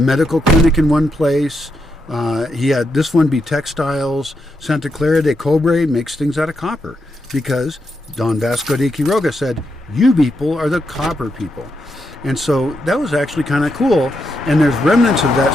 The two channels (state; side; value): normal; both; correlation 0.83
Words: clinic in one place. He had this one be textiles. Santa Clara de Cobre makes things out of copper because Don Vasco de Quiroga said, you people are the copper people. And so that was actually kind of cool. And there's remnants of that